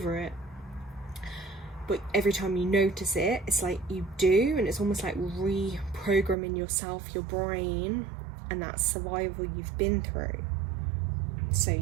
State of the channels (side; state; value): left; drops out; at 6.4 s